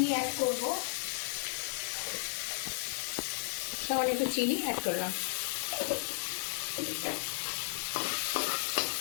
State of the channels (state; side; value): silent; right; digital silence